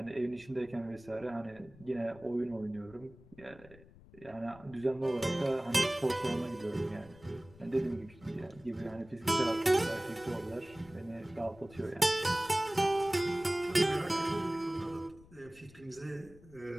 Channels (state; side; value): noise; left; rumble, 22 dB below the sound